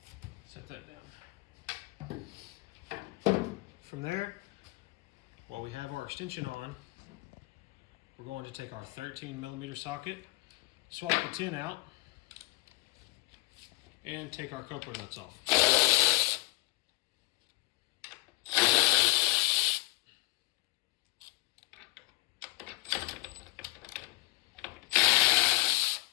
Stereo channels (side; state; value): right; quieter; 22.8 dB